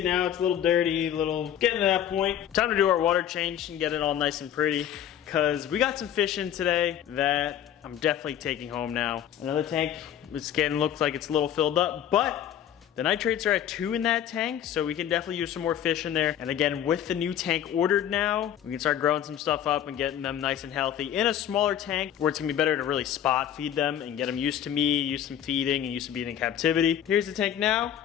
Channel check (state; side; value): quieter; right; 10.3 dB